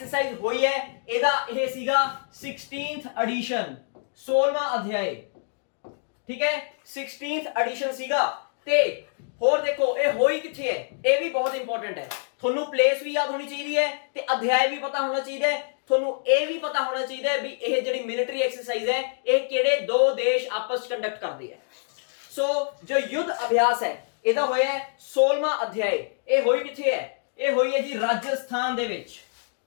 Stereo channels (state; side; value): silent; right; digital silence